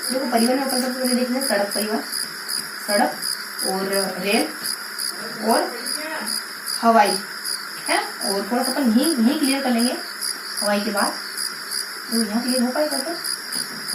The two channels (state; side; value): identical; both; correlation 1.00